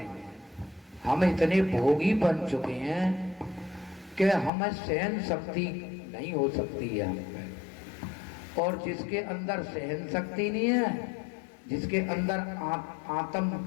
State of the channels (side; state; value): right; drops out; at 4.5 s